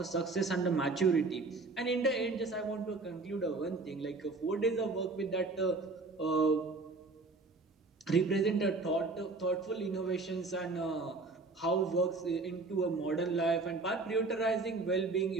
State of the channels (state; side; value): quieter; left; 3.6 dB